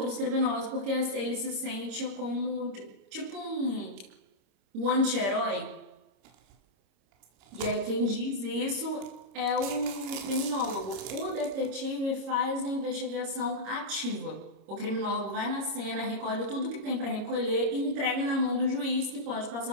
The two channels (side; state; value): left; late; 25 ms